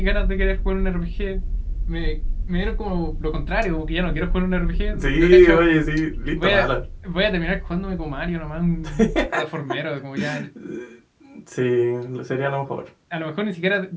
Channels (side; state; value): both; identical; correlation 1.00